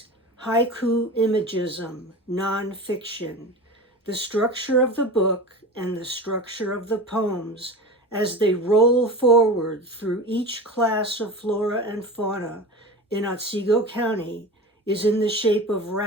haiku imagism, nonfiction, the structure of the book and the structure of the poems as they roll forward through each class of flora and fauna in Otsego County is in the shape of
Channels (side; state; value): both; normal; correlation 0.31